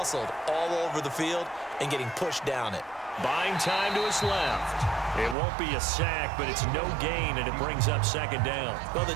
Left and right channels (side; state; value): left; drops out; at 5.4 s